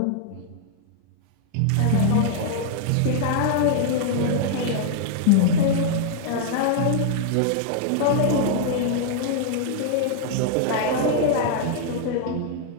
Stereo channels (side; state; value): both; different; correlation -0.01